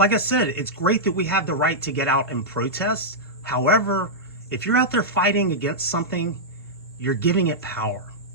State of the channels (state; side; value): normal; both; correlation -0.09